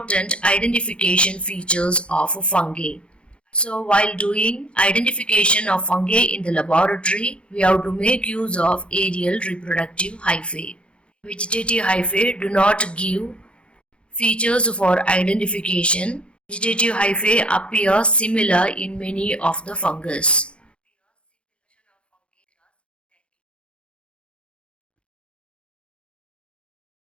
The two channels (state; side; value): late; right; 0.058 ms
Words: identification features of fungi. So while doing identification of fungi in the laboratory, we have to make use of aerial reproductive hyphae. Vegetative hyphae do not give features for identification. Vegetative hyphae appear similar in many of the fungus.